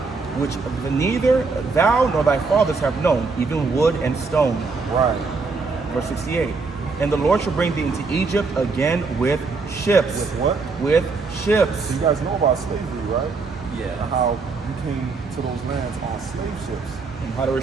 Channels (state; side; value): quieter; left; 4.3 dB